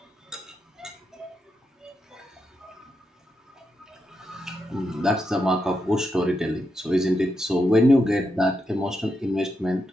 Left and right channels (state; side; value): normal; both; correlation 0.84